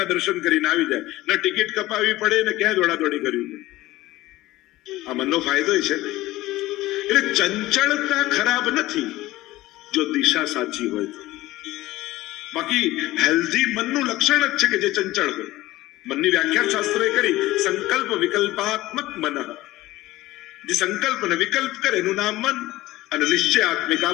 દર્શન કરીને આવી જાય. ન ટિકિટ કપાવી પડે ને ક્યાં દોડાદોડી કરવી પડે. આ મનનો ફાયદો છે ને. એટલે ચંચળતા ખરાબ નથી જો દિશા સાચી હોય તો. બાકી હેલ્ધી મનનું લક્ષણ જ છે કે જે ચંચળ હોય. મનની વ્યાખ્યા શાસ્ત્રોએ કરી, સંકલ્પ વિકલ્પાત્મક મન. જે સંકલ્પ ને વિકલ્પ કરે એનું નામ મન. અને નિશ્ચયાત્મિકા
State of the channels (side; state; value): right; quieter; 17.4 dB